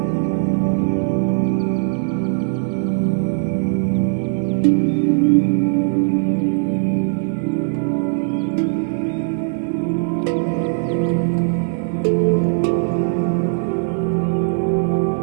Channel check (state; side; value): silent; left; 66 dB below the other